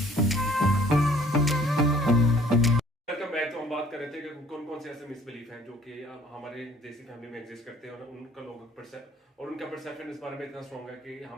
Welcome back. तो हम बात कर रहे थे कि कौन कौन से ऐसे मिसबिलीफ हैं जो कि हमारे देसी फैमिली में एग्जिस्ट करते हैं और उनका लोग और उनका परसेप्शन इस बारे में इतना स्ट्रॉन्ग है कि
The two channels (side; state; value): both; normal; correlation 0.56